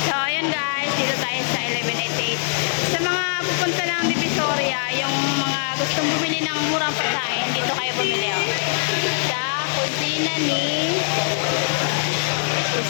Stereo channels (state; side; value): silent; right; digital silence